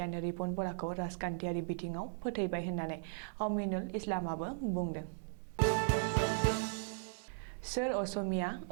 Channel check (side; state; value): left; silent; digital silence